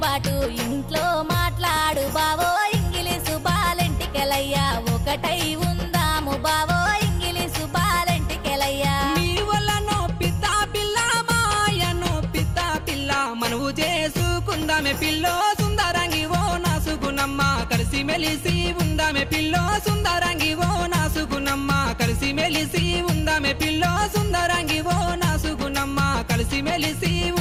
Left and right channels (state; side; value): identical; both; correlation 1.00